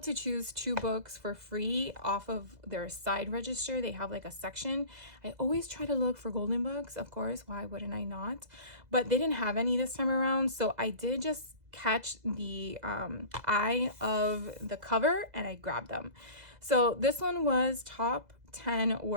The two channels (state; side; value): late; left; 2.0 ms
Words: choose 2 books for free off of their side register. They have like a section. I always try to look for golden books, of course. Why wouldn't I not? But they didn't have any this time around. So I did just catch the eye of the cover and I grabbed them. So this one was top 10